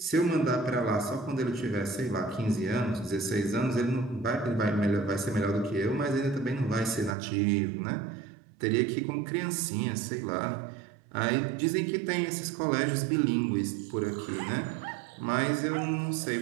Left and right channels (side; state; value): left; drops out; at 7.2 s